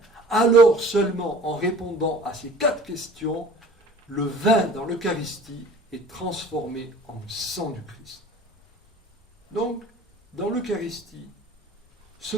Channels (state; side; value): normal; both; correlation 0.47